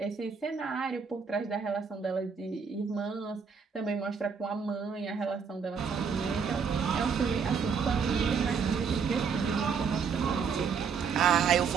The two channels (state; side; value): quieter; left; 6.1 dB